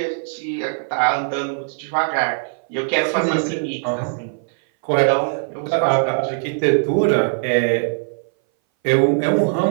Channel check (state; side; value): silent; left; 60 dB below the other